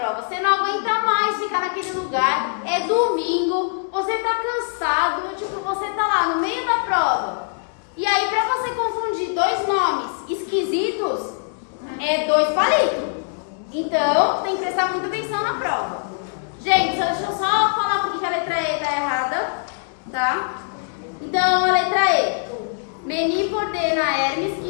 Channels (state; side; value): silent; right; 64 dB below the other